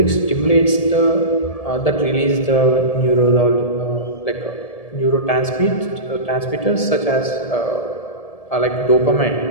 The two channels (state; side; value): late; right; 1.7 ms